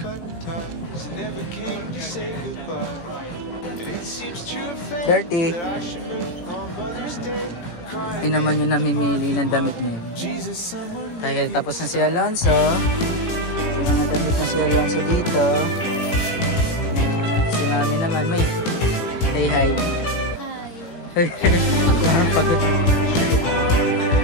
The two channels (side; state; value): right; late; 17 ms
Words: ties and never came to say goodbye. And it seems true of fate that I should move on Mother's Day. Hindi naman yung namimili ng damit niya. Dahil tapos na si Alonso. Yung mga damit na si Alonso dito. Si mami naman, may. Say hi. Hi.